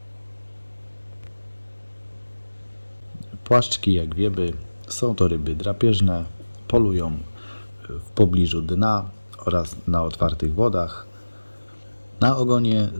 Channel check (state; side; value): inverted; both; correlation -1.00